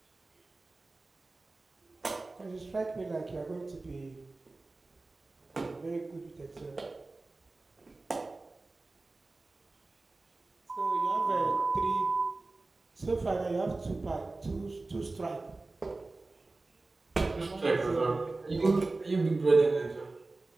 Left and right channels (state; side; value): quieter; left; 3.3 dB